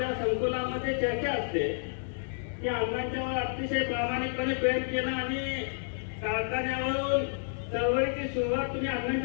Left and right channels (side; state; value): right; silent; 58 dB below the other